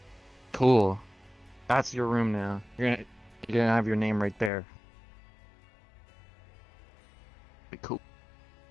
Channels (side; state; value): right; drops out; at 4.5 s